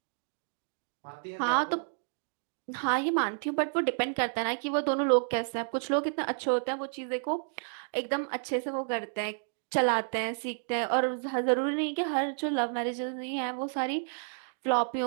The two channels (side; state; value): left; silent; digital silence